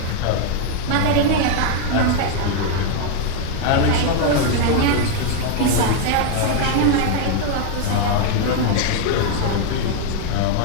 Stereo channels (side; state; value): both; different; correlation 0.00